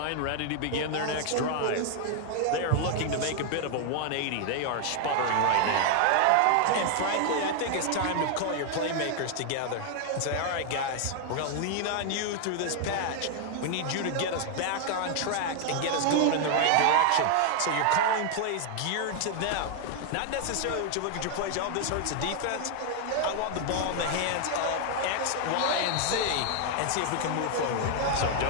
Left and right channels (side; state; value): both; different; correlation 0.00